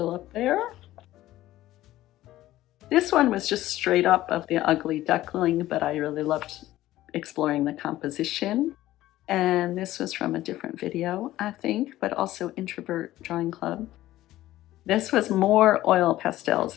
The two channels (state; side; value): quieter; right; 15.2 dB